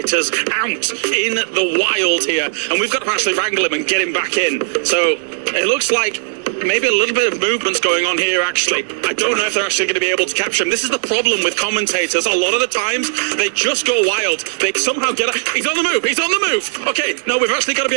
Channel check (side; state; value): left; silent; digital silence